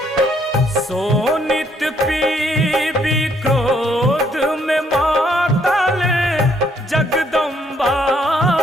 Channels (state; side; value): normal; both; correlation 0.69